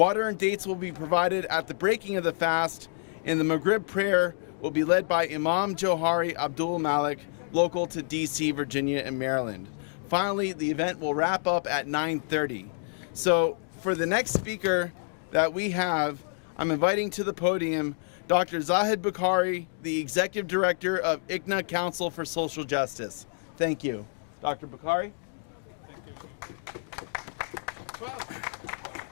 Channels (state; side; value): silent; right; digital silence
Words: and dates will be provided at the breaking of the fast, and the Maghrib prayer will be led by Imam Johari Abdul Malik, local to DC, Virginia, and Maryland. Finally, the event will wrap up at 9:30. So for the next speaker that we have, I'm inviting to the podium Dr. Zahid Bukhari, the Executive Director of ICNA Council for Social Justice. Thank you. Dr. Bukhari.